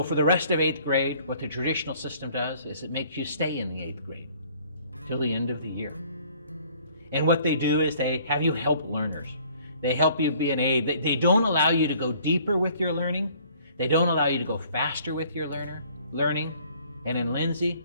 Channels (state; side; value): inverted; both; correlation -0.57